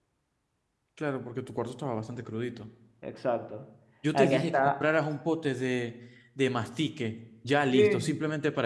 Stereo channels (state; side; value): identical; both; correlation 1.00